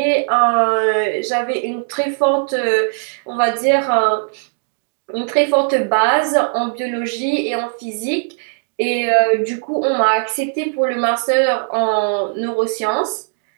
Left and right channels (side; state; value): left; silent; digital silence